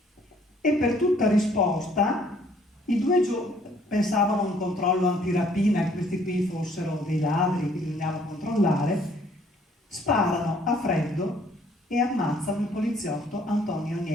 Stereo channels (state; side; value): normal; both; correlation 0.61